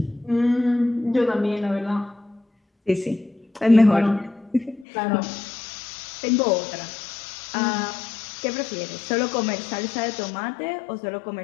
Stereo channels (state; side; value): drops out; right; at 4.9 s